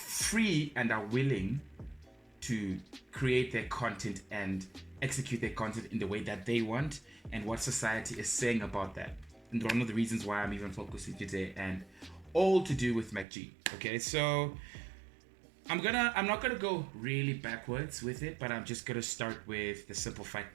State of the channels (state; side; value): drops out; left; at 13.2 s